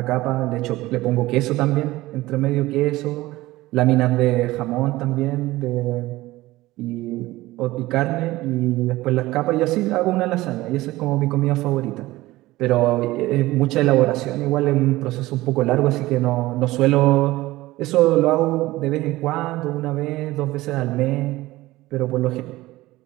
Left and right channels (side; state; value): left; quieter; 18.1 dB